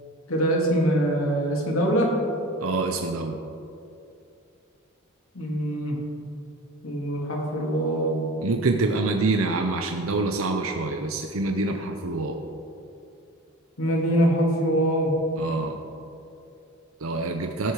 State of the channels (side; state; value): both; normal; correlation 0.38